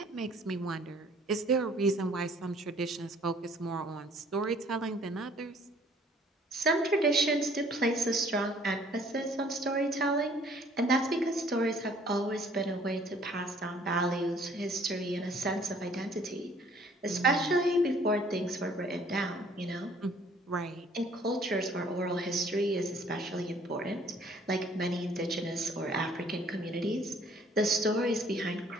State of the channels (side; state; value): both; normal; correlation 0.58